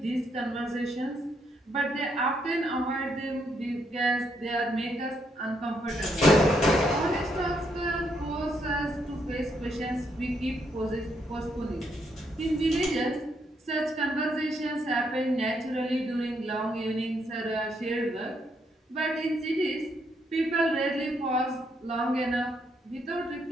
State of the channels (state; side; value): normal; both; correlation 0.75